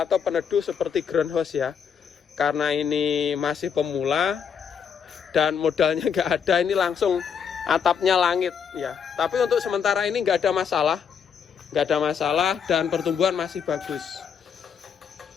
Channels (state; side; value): quieter; right; 7.2 dB